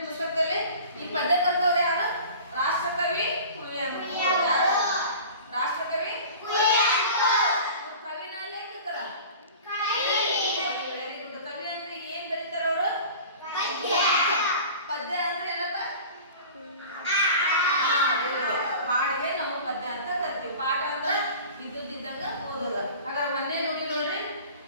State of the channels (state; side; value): inverted; both; correlation -0.40